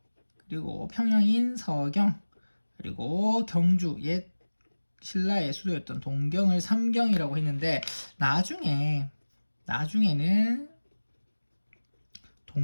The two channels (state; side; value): inverted; both; correlation -1.00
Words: 그리고 평양인 서경, 그리고 경주, 옛 신라의 수도였던 동경을 삼경이라고 했는데, 나중에는